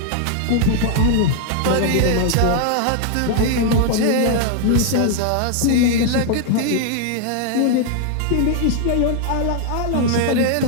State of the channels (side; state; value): both; different; correlation 0.00